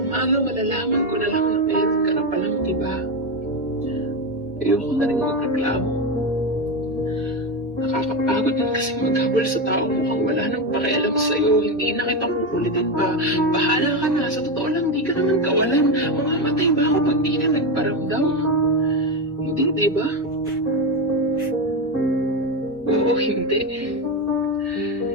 umaga malalaman ko na lang na meron ka na palang iba. Ayoko na rin magreklamo. Nakakapagod din kasi maghabol sa taong mukhang wala nang pakialam sa'yo. Hindi na kita kukulitin pa. Bahala ka na. Sa totoo lang, di ka naman kawalan. Mamamatay ba ako pag di ka nagparamdam? Hindi, di ba? Oo, hindi.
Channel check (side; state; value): both; normal; correlation 0.13